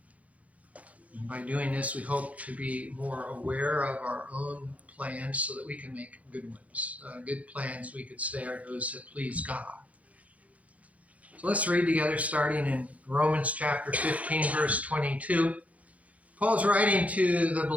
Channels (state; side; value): late; left; 0.068 ms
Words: And by doing this, we hope to be more aware of our own plans so that we can make good ones. Good plans, we could say, are those that please God. So let's read together, starting in Romans chapter 15, verse 22. Paul's writing to the